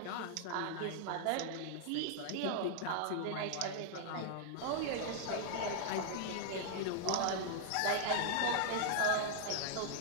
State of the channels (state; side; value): different; both; correlation -0.01